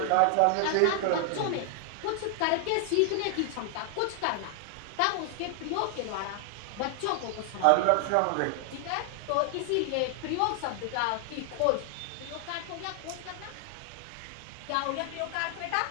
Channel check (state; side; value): different; both; correlation 0.00